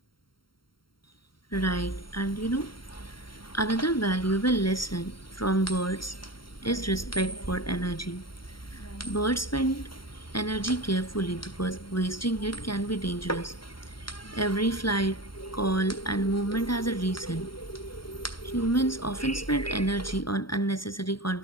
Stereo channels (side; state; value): right; late; 0.73 ms